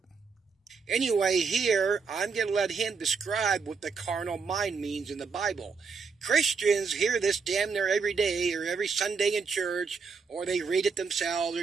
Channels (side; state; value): left; quieter; 5.1 dB